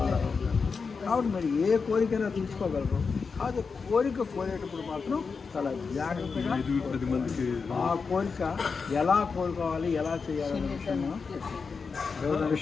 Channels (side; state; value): right; quieter; 5.1 dB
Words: కాబట్టి మరి ఏ కోరికైనా తీసుకోగలరు. కాదు కోరేటప్పుడు మాత్రం చాలా జాగ్రత్తగా ఆ కోరిక ఎలా కోరుకోవాలి, ఎలా చేయాలనే విషయం